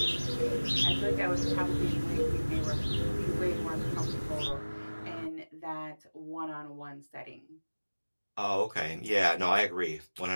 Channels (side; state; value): both; inverted; correlation -1.00